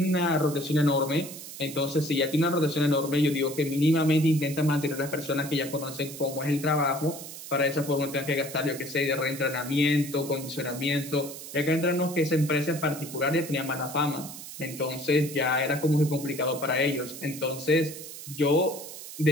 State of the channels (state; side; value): noise; right; hiss, 12 dB below the sound